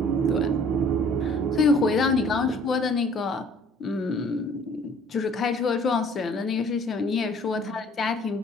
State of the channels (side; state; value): both; normal; correlation 0.55